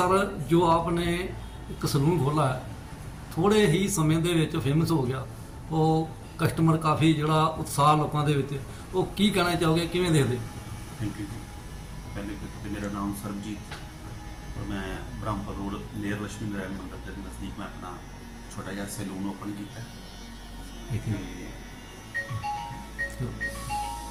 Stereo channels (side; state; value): both; identical; correlation 1.00